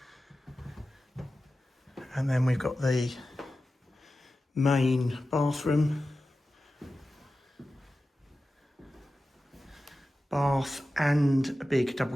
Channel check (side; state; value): both; normal; correlation 0.94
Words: And then we've got the main bathroom, bath and a big